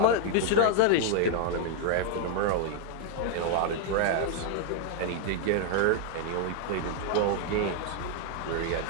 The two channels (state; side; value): different; both; correlation 0.00